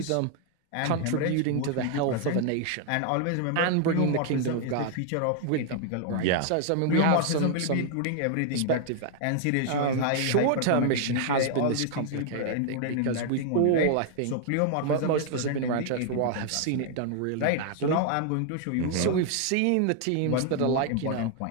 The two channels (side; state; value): both; different; correlation 0.00